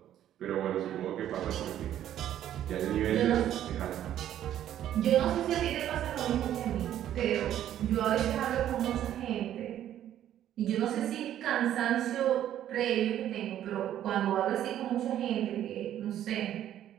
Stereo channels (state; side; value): quieter; left; 11.4 dB